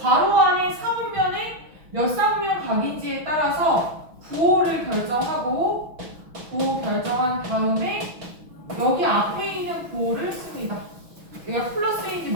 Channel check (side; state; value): left; late; 6.1 ms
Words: 안에 사분면에 몇 사분면 각인지에 따라서 부호를 결정하고 부호 결정한 다음에 여기 앞에 있는 부호를 씁니다. 얘가 플러스인지